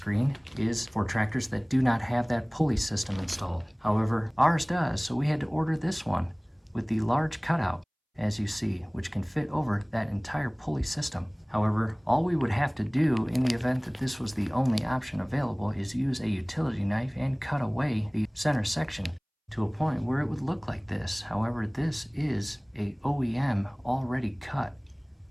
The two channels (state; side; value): identical; both; correlation 1.00